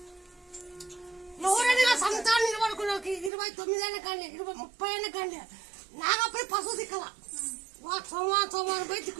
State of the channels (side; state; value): left; drops out; at 3.3 s